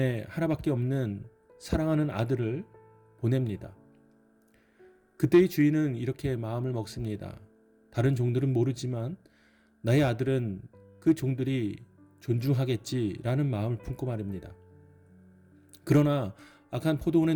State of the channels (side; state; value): both; identical; correlation 1.00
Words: 하나밖에 없는 사랑하는 아들을 보냅니다. 그때의 주인은 이렇게 마음을 먹습니다. 다른 종들은 모르지만 나의 아들은 그 종들이 존중하겠지라는 마음을 품고 말입니다. 그러나 악한 포도원의